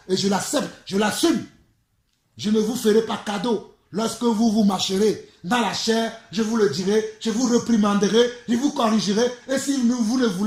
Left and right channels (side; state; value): both; identical; correlation 1.00